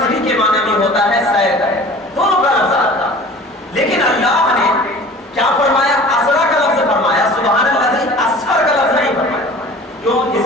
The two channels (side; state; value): both; normal; correlation 0.44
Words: کے معنی بھی ہوتا ہے سیر کا. دونوں کا لفظ آتا ہے. لیکن اللہ نے کیا فرمایا؟ اسرا کا لفظ فرمایا، سبحان الذی اسفر کا لفظ نہیں فرمایا. کیوں؟